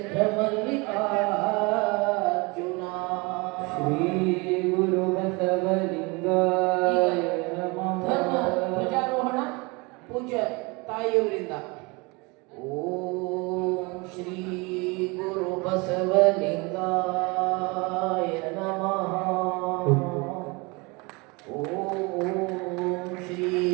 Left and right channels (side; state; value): left; quieter; 27.4 dB